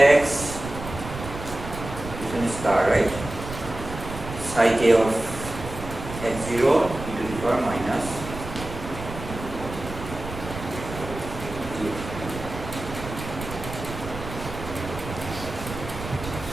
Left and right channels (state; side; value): noise; right; rumble, 10 dB below the sound